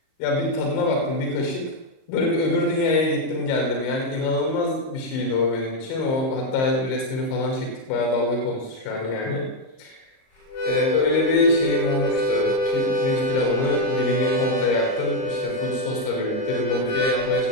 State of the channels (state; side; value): late; right; 38 ms